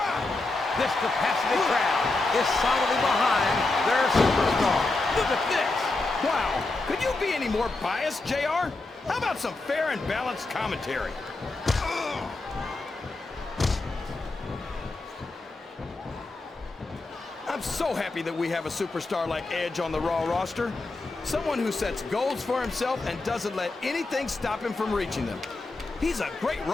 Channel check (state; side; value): quieter; right; 3.2 dB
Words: This capacity crowd is solidly behind their superstar. Look at this. Wow, could you be any more biased, JR? How about some fair and balanced commentary? I'm so happy that we have a superstar like Edge on the Raw roster. Someone who sets goals for himself and doesn't let anything stop him from reaching them. He's a great